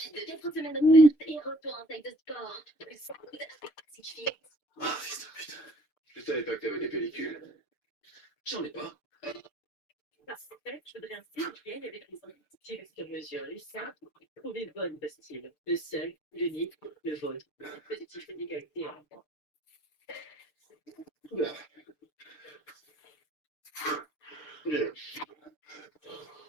de 4 semaines offertes et retour en salle de sport. Plus 100 coups d'artificiel. Ah, fils de pute. Je savais pas que t'avais des pellicules. J'en ai pas. Parce que je voudrais un style avec les styles sur mesure. Les simples, trouvez le bon style. Le seul, l'unique, le vôtre. Positif et d'égalité.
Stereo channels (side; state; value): right; late; 6.7 ms